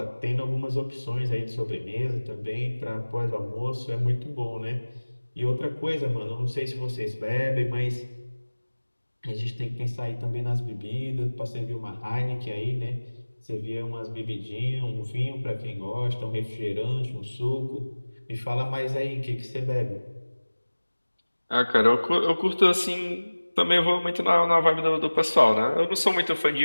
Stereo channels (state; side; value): inverted; both; correlation -1.00